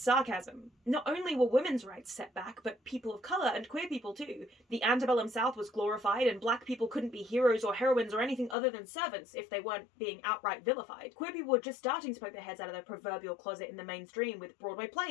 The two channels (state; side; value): drops out; right; at 8.6 s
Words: sarcasm. Not only were women's rights set back, but people of colour and queer people too. The antebellum South was glorified and black people couldn't be heroes or heroines or anything other than servants if they weren't being outright vilified. Queer people were just starting to poke their heads out of their proverbial closet in the mainstream with Broadway